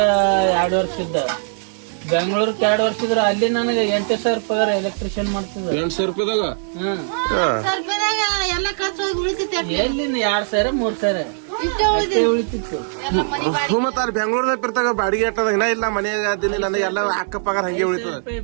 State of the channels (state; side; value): silent; left; digital silence